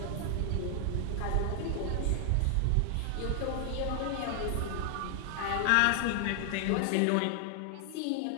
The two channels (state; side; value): different; both; correlation 0.00